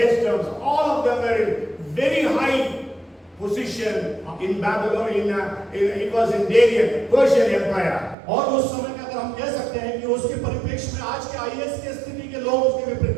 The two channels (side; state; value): left; drops out; at 8.2 s